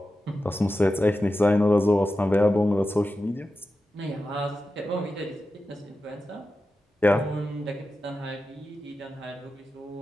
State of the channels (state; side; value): normal; both; correlation 0.92